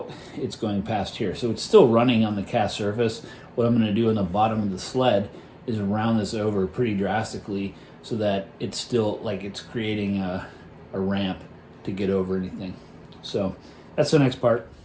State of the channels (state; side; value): identical; both; correlation 1.00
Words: it's going past here. So it's still running on the cast surface. What I'm going to do on the bottom of the sled is round this over pretty drastically so that it's still, like, it's creating a ramp to get over anything. So that's the next part.